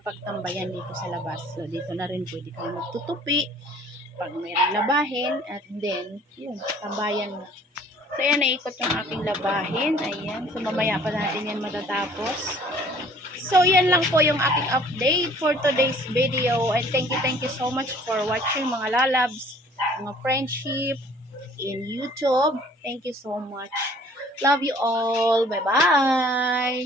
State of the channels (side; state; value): both; normal; correlation 0.54